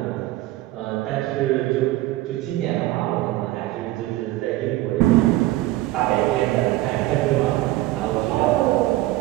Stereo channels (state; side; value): quieter; left; 17.2 dB